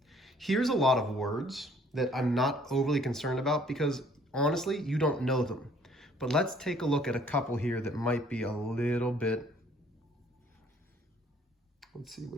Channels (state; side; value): normal; both; correlation 0.60